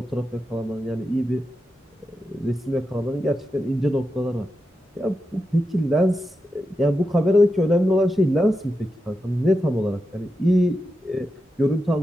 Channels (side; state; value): both; normal; correlation 0.89